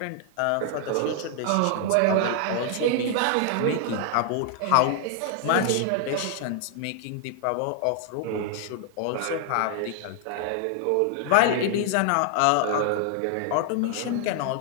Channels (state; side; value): different; both; correlation 0.00